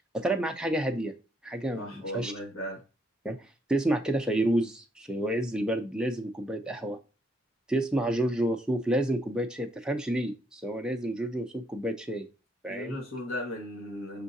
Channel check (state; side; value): normal; both; correlation 0.73